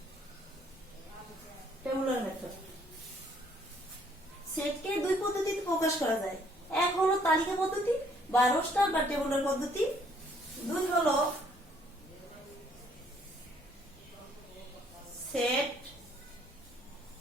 Tabular method. সেটকে দুই পদ্ধতিতে প্রকাশ করা যায়। এক হলো তালিকা পদ্ধতি বা রোস্টার বা টেবুলার পদ্ধতি। দুই হলো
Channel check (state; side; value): normal; both; correlation 0.64